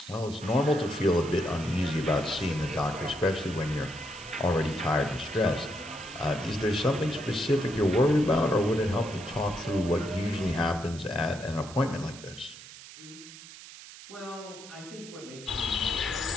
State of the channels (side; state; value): right; noise; hiss, 16 dB below the sound